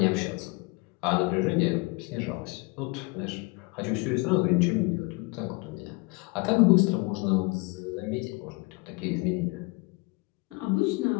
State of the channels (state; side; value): quieter; right; 26.6 dB